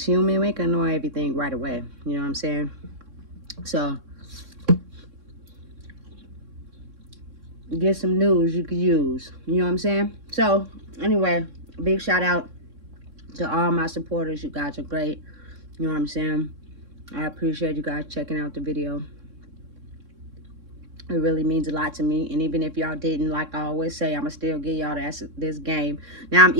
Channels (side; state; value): left; late; 3.6 ms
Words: human. We can know everything right away. You know what I'm saying? So, get some news you could use. You know what I'm saying? So, anyway, big shout out to all my supporters. You guys are great. You know what I'm saying? I appreciate you guys checking out the video. It really means a lot to me. And even if y'all didn't, like I always say, I'ma still give y'all this game. Now, I'm